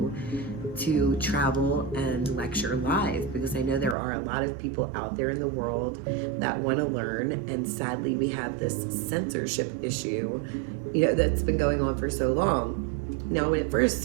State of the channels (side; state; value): left; drops out; at 4.0 s